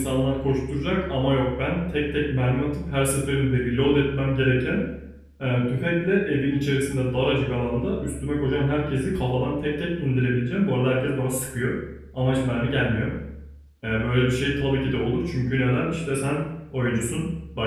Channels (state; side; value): identical; both; correlation 1.00